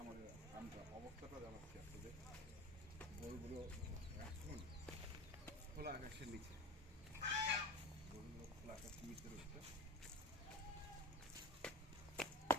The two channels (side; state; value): both; normal; correlation 0.31